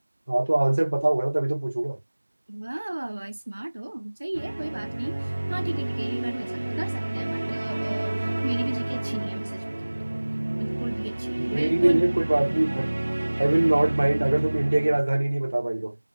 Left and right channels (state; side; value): inverted; both; correlation -1.00